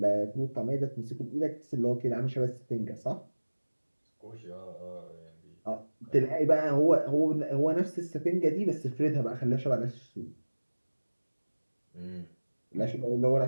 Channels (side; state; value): both; inverted; correlation -1.00